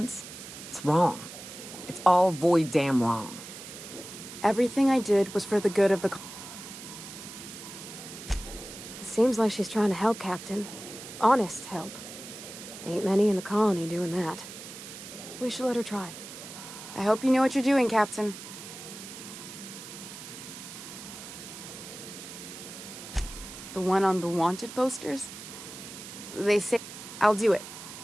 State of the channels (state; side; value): noise; right; hiss, 12 dB below the sound